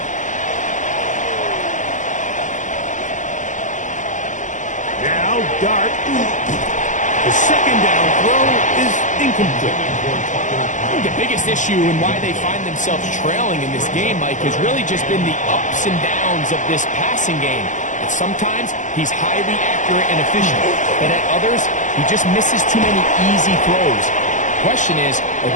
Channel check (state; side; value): late; right; 0.37 ms